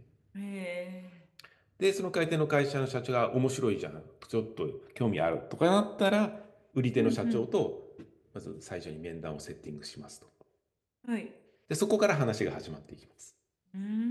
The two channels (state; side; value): identical; both; correlation 1.00